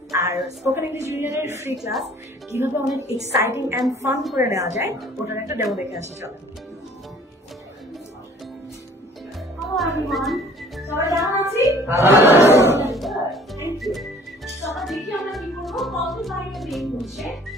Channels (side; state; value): both; normal; correlation 0.53